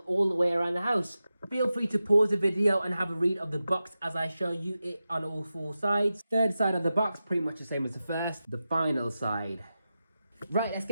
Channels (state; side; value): inverted; both; correlation -0.92